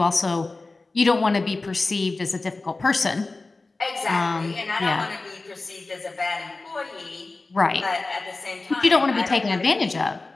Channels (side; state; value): right; quieter; 3.4 dB